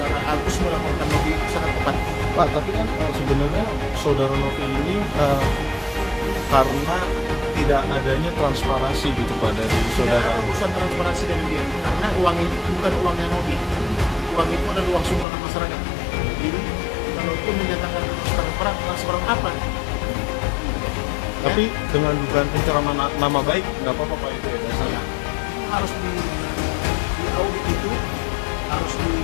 Agus melaporkan Novi itu sangat tepat. Pak, tapi kan sebenarnya saudara Novi ini karena tidak adanya transparansi gitu Pak dari Tidak saudara ada urusan transparansi dengan dia, karena uang itu bukan uangnya Novi. Uang itu adalah uang sumbangan masyarakat. Jadi kalau itu menyatakan transparan apa? Tapi dengan dugaan pencemaran nama baik nggak apa-apa Pak itu ya dasarnya. Harus di audit itu harus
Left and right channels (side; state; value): right; drops out; at 15.2 s